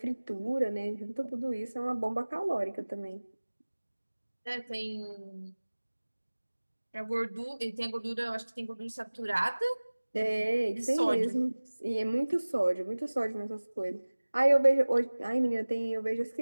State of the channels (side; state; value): both; inverted; correlation -1.00